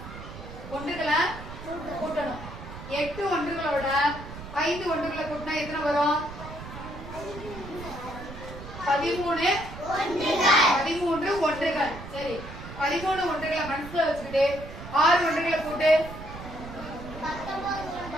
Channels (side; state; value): right; noise; rumble, 12 dB below the sound